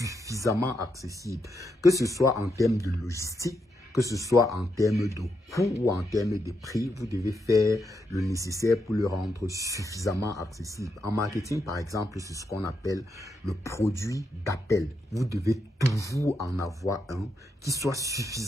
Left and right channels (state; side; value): normal; both; correlation 0.82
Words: accessible, que ce soit en termes de logistique, que ce soit en termes de coût ou en termes de prix, vous devez faire le nécessaire pour le rendre suffisamment accessible. En marketing, par exemple, c'est ce qu'on appelle le produit d'appel. Vous devez toujours en avoir un qui soit